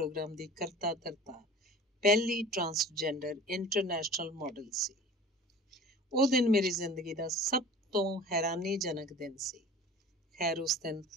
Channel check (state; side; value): normal; both; correlation 0.43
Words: ਦੀ ਕਰਤਾ ਧਰਤਾ ਪਹਿਲੀ ਟਰਾਂਸਜੈਂਡਰ ਇੰਟਰਨੈਸ਼ਨਲ ਮਾਡਲ ਸੀ। ਉਹ ਦਿਨ ਮੇਰੀ ਜ਼ਿੰਦਗੀ ਦਾ ਸਭ ਤੋਂ ਹੈਰਾਨੀਜਨਕ ਦਿਨ ਸੀ। ਖੈਰ, ਉਸ ਦਿਨ